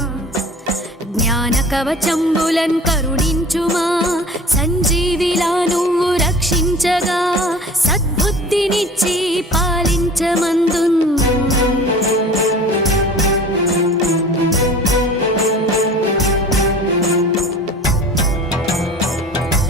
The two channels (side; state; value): both; normal; correlation 0.42